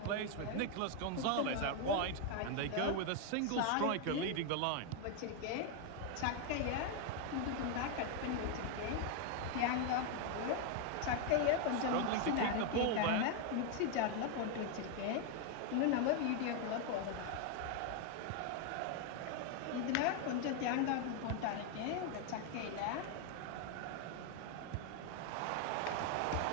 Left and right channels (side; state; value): both; different; correlation 0.01